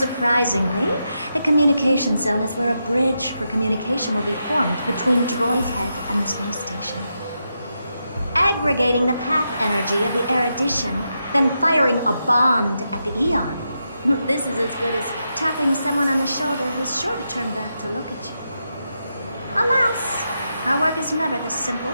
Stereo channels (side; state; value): both; inverted; correlation -0.85